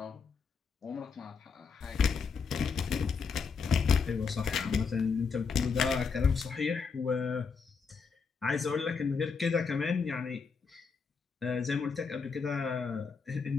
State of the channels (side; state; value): right; quieter; 5.4 dB